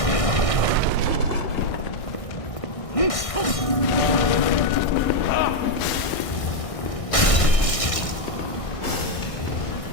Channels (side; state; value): right; late; 1.6 ms